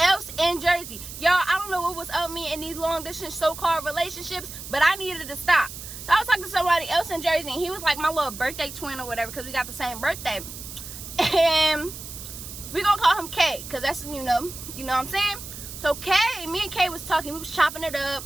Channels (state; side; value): noise; right; hiss, 11 dB below the sound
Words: in Jersey. Y'all, I don't know what was up with me in these long distance so-called relationships. But I needed to stop. So I was talking to somebody else in Jersey. And he was like my little birthday twin or whatever. Because we got the same birthday. And we gonna call him K. Because that's, you know what I'm saying? So K, me and K was talking. We was chopping it up.